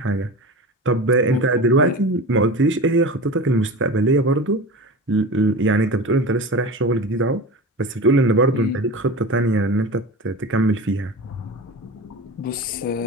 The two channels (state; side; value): normal; both; correlation 0.30